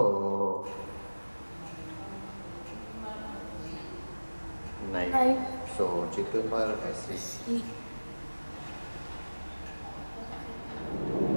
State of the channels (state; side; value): inverted; both; correlation -1.00